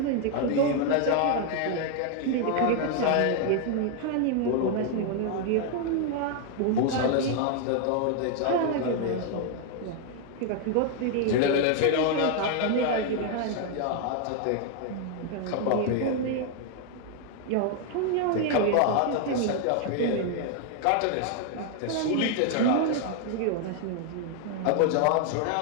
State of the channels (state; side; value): different; both; correlation 0.00